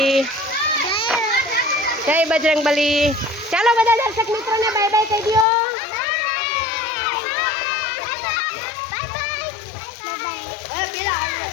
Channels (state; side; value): drops out; right; at 5.5 s